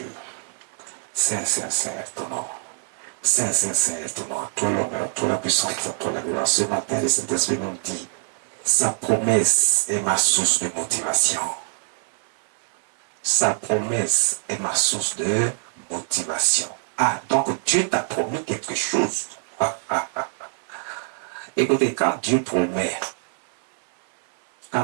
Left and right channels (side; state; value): left; silent; 63 dB below the other